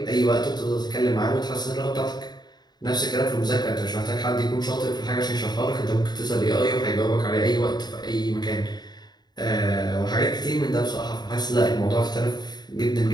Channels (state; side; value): late; right; 0.20 ms